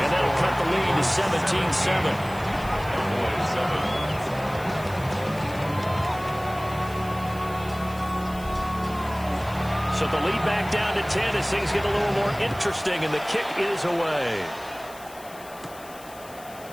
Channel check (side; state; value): left; noise; hiss, 20 dB below the sound